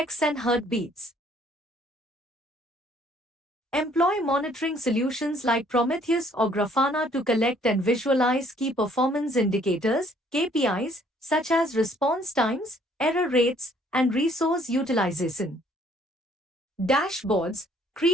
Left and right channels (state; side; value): normal; both; correlation 0.62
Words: and heartbeats. Employ monitoring solutions like Prometheus or Grafana to collect and visualize key performance indicators, KPIs, such as response times, error rates, and resource utilization. Dashboards.